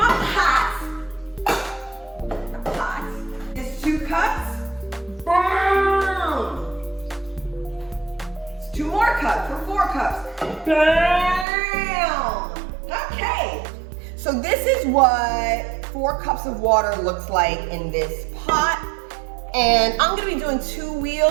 pot. The pot is 2 cups. Boom! It's 2 more cups for 4 cups. Bam! Okay, so this is what 4 cups of water looks like in this pot. And I'm gonna be doing 2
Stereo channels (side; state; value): left; drops out; at 11.5 s